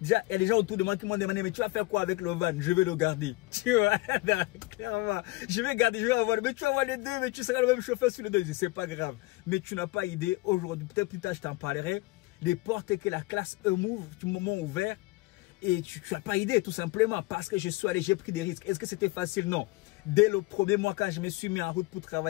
il y a des gens autour de moi qui m'ont demandé, mais tu vas faire quoi avec le van? Je vais le garder. Tu vois, clairement, je vais garder, je vais avoir, mais tu vas avoir les deux, mais tu seras le même chauffeur sur les deux. C'est pas grave. Mais tu n'as pas idée, aujourd'hui, peut-être plus tard, je t'en parlerai, les portes que la classe E m'ouvre, du moment ouvert, et tu n'as pas idée, tout simplement, parce que je suis allé, j'ai pris des risques. Est-ce que c'était facile? Non. Dès le premier mois, quand je me suis mis en route pour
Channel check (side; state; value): right; quieter; 22.1 dB